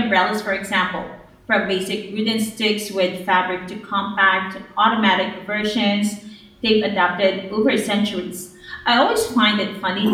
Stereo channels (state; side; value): identical; both; correlation 1.00